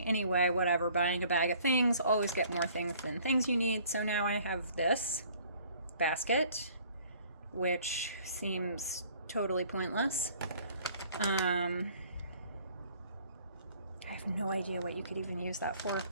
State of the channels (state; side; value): inverted; both; correlation -0.56